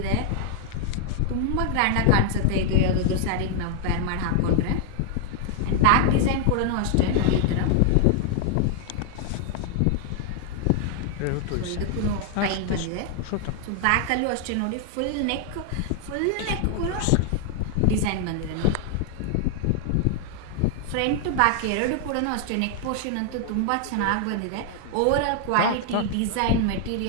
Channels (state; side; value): different; both; correlation 0.00